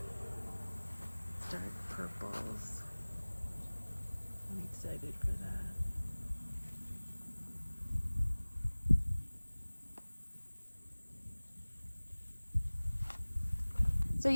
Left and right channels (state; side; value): inverted; both; correlation -1.00